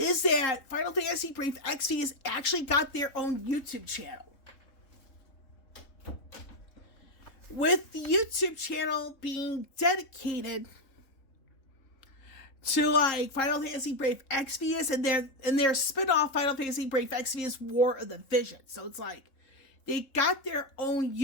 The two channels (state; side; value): late; right; 3.6 ms